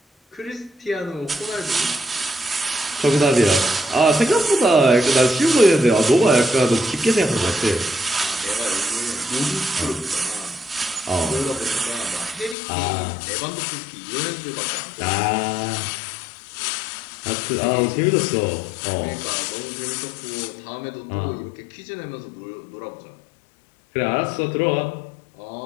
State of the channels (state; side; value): drops out; right; at 12.6 s